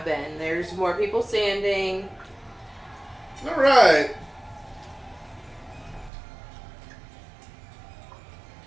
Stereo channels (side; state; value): left; drops out; at 6.1 s